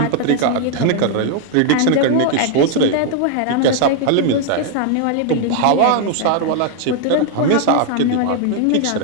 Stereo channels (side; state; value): both; different; correlation 0.00